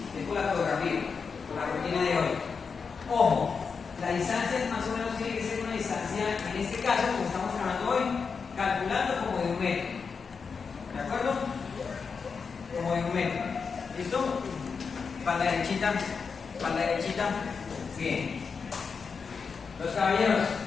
es por la fotografía, por la rutina de hoy. Ojo, la distancia más o menos tiene que ser una distancia, en este caso, como estamos trabajando hoy, calculando como de 1 metro. ¿De acuerdo? Como de 1 metro. ¿Listo? Espalda derechita, espalda derechita. Bien. Los caballeros.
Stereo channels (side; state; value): right; quieter; 5.5 dB